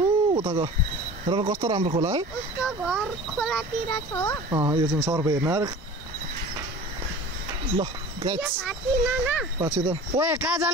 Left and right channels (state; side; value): normal; both; correlation 0.40